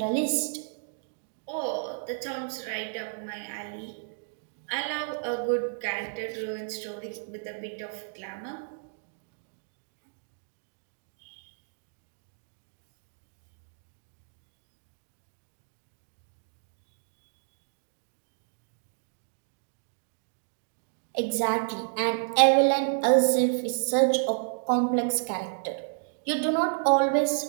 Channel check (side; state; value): left; silent; digital silence